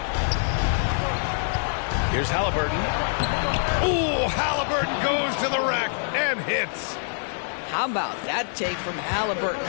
Here's Halliburton. Ooh, Halliburton goes to the rack and hits. How about that take from Halliburton?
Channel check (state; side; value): silent; right; 55 dB below the other